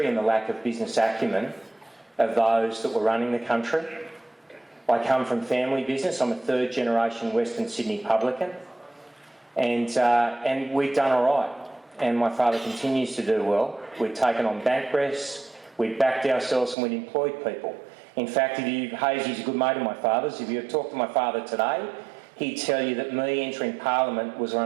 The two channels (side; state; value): left; drops out; at 16.8 s